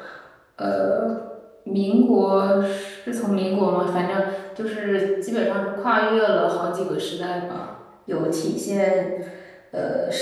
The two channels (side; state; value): both; identical; correlation 1.00